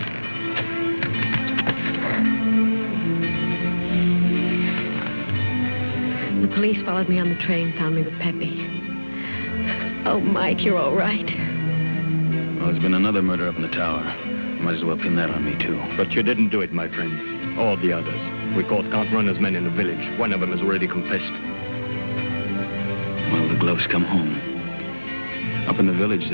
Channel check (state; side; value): inverted; both; correlation -1.00